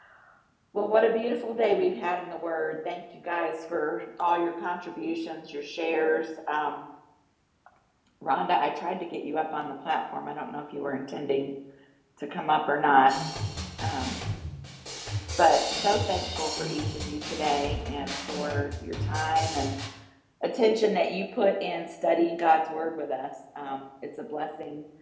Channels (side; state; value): both; identical; correlation 1.00